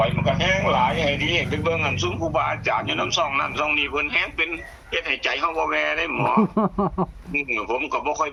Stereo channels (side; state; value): both; identical; correlation 1.00